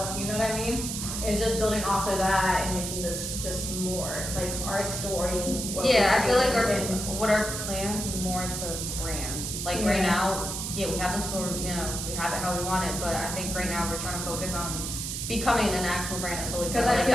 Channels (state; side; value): noise; right; hiss, 4 dB below the sound